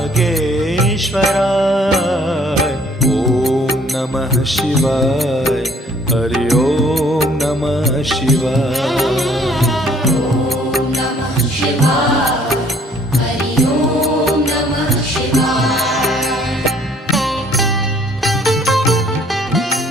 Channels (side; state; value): both; normal; correlation 0.60